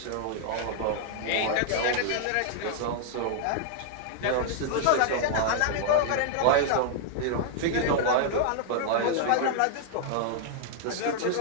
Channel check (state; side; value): different; both; correlation -0.01